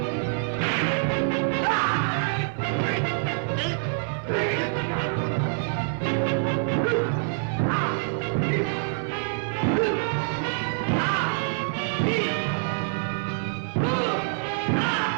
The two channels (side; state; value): left; silent; digital silence